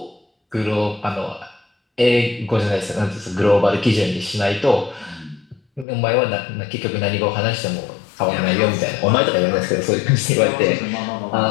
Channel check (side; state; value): right; drops out; at 5.9 s